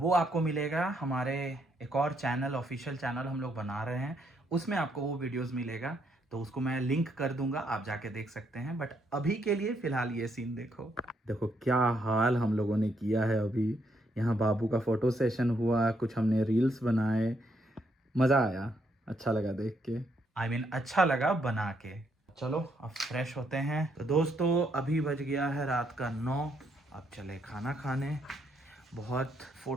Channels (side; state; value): both; normal; correlation 0.74